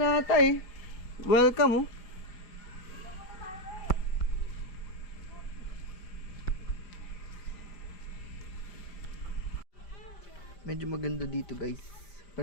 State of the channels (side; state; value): right; late; 4.9 ms